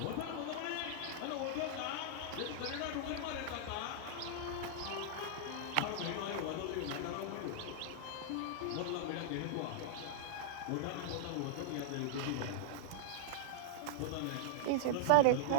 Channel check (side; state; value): both; different; correlation -0.01